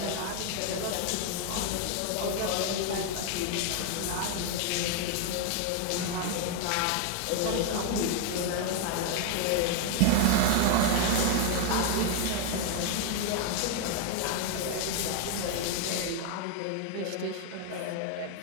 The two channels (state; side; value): different; both; correlation 0.00